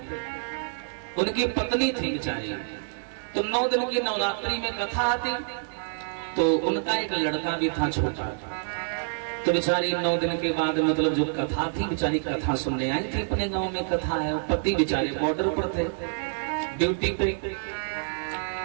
उनकी पत्नी थी बेचारी। तो 9 दिन की नवरात्रि में कथा आती तो उनका एक लड़का भी था छोटा। तो बेचारी 9 दिन के बाद मतलब जो कथा थी, बेचारी कथा सुनने आई थी। अपने गांव में कथा है। पति बेचारे बॉर्डर पर थे, ड्यूटी पे।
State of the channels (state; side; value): silent; left; digital silence